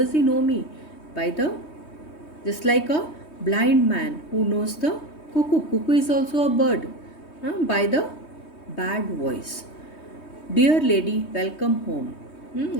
he know me? By the, just like a blind man who knows the cuckoo. Cuckoo is also a bird. By the bad voice. Dear lady, welcome home.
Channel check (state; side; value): late; right; 3.2 ms